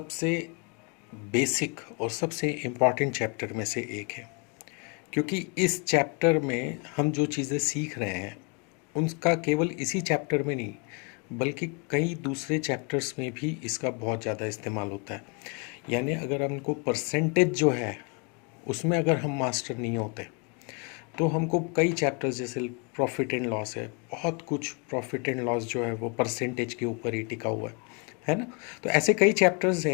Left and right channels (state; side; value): quieter; right; 34.1 dB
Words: बेसिक और सबसे इम्पॉर्टेंट चैप्टर में से एक है, क्योंकि इस चैप्टर में हम जो चीज़ें सीख रहे हैं उनका केवल इसी चैप्टर में नहीं बल्कि कई दूसरे चैप्टर्स में भी इसका बहुत ज़्यादा इस्तेमाल होता है। यानी अगर हमको परसेंटेज जो है उसमें अगर हम मास्टर नहीं होते तो हमको कई चैप्टर्स जैसे प्रॉफिट एंड लॉस है, बहुत कुछ प्रॉफिट एंड लॉस जो है वो परसेंटेज के ऊपर ही टिका हुआ है ना। तो ऐसे कई चैप्टर्स